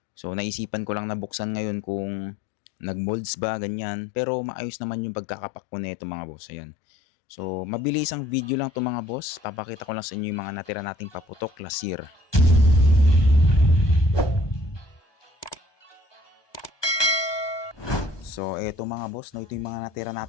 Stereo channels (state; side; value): late; right; 1.2 ms